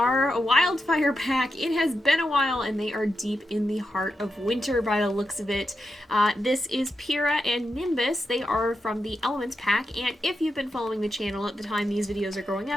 Wildfire pack. It has been a while and they are deep in the heart of winter by the looks of it. This is Pyra and Nimbus. They are from the Elements pack, and if you've been following the channel at the time these videos are growing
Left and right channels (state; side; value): normal; both; correlation 0.87